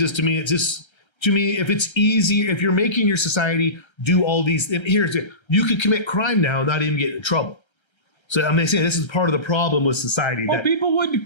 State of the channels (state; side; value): late; right; 1.3 ms